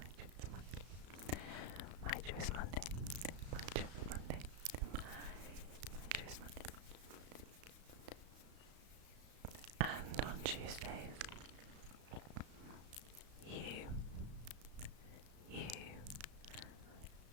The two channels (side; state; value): left; late; 34 ms